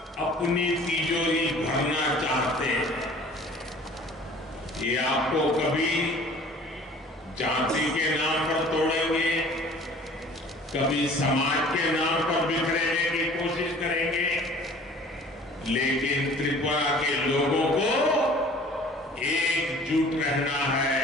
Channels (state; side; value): normal; both; correlation 0.49